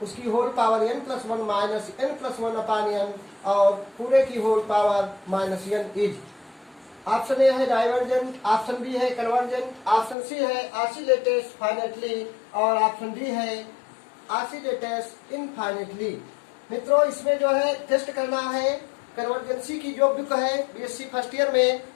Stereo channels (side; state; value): right; drops out; at 10.2 s